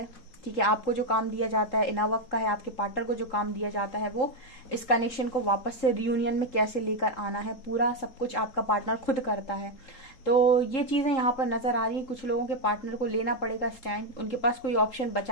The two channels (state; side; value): late; right; 3.8 ms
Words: ठीक है। आपको जो काम दिया जाता है इनर वर्क का है, आपके पार्टनर को जो काम दिया जाता है वो इस कनेक्शन को वापस से रियूनियन में कैसे लेकर आना है, पूरा सब कुछ आपका पार्टनर खुद करता है। तो ये चीजें यहाँ पर नजर आ रही है। कुछ लोगों के पार्टनर को लेना पड़ेगा स्टैंड, उनके पास कोई ऑप्शन